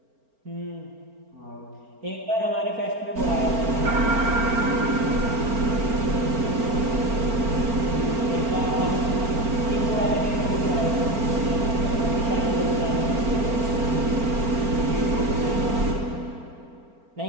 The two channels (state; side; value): late; left; 4.4 ms